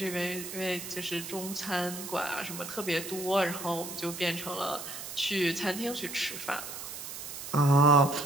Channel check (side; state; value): right; noise; hiss, 9 dB below the sound